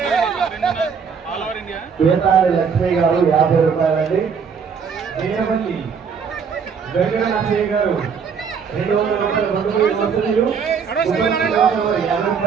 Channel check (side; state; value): left; quieter; 6.3 dB